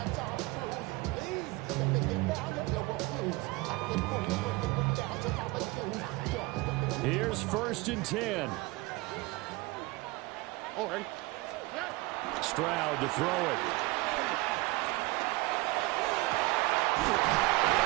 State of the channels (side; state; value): left; quieter; 22.1 dB